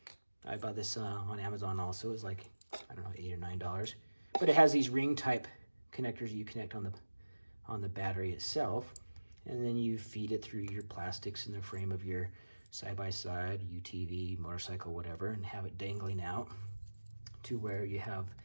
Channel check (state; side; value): inverted; both; correlation -1.00